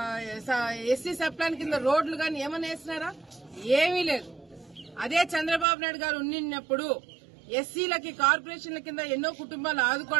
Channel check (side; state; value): left; drops out; at 5.7 s